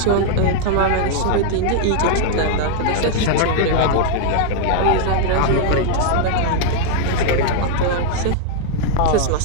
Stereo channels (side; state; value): both; different; correlation 0.00